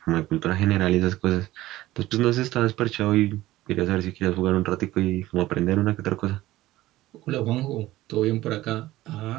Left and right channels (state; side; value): quieter; left; 16.5 dB